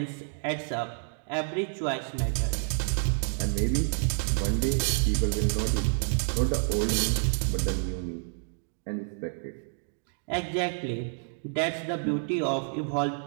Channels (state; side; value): silent; left; digital silence